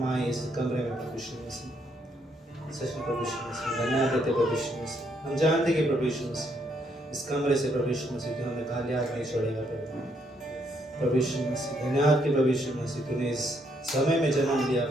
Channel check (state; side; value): normal; both; correlation 0.73